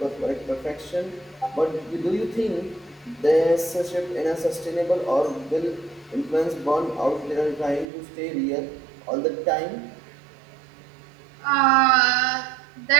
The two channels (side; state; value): left; drops out; at 7.9 s